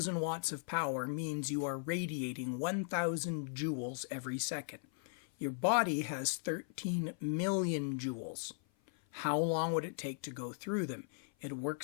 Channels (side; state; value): right; silent; 53 dB below the other